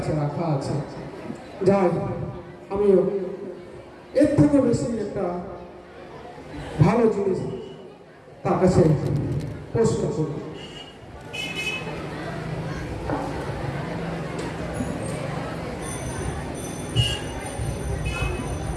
রাখা আছে। যাই, আমিও এর থেকেও বেশি একটা ভালো জিনিস তার কাছে প্রশ্ন করব।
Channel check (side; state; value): both; identical; correlation 1.00